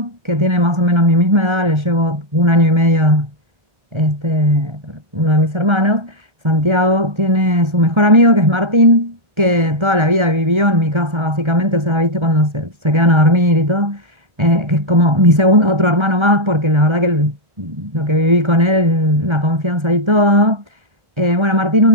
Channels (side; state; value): left; late; 1.3 ms